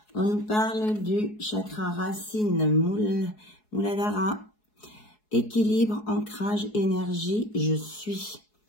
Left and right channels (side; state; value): right; late; 4.7 ms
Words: On nous parle du chakra racine, Muladhara. Équilibre, ancrage, énergie, je suis.